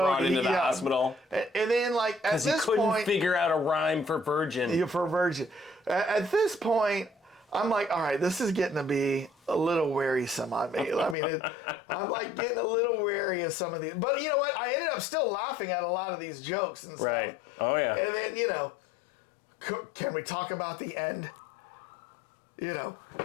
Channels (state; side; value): drops out; right; at 11.2 s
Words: into the hospital, and then like at this point, because he couldn't figure out a rhyme for virgin. Yeah, for virgin. At this point, I'm like, all right, this is getting to be a little wearisome on me. I mean, I'm like getting a little wary of some of these. But you know what? I ended up still laughing at a lot of these jokes and stuff. Right. Oh yeah. And then can we talk about the end?